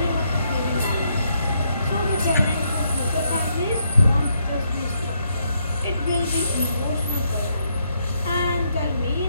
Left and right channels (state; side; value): inverted; both; correlation -0.76